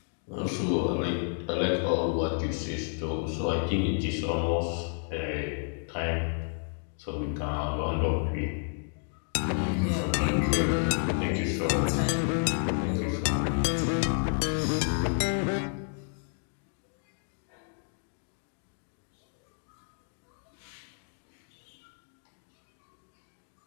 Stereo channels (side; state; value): right; silent; 57 dB below the other